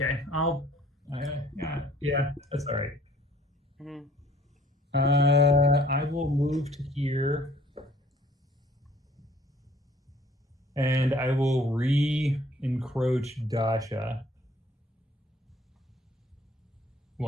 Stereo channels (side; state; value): both; normal; correlation 0.57